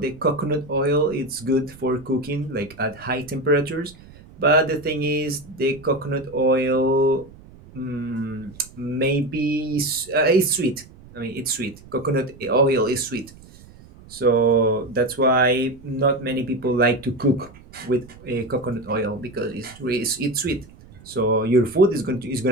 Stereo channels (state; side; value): noise; right; rumble, 22 dB below the sound